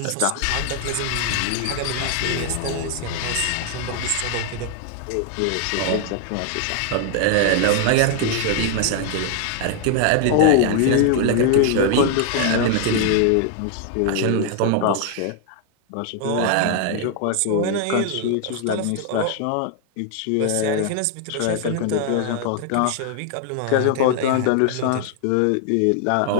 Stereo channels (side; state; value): both; different; correlation 0.00